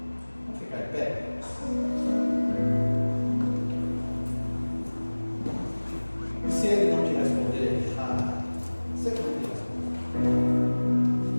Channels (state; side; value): inverted; both; correlation -1.00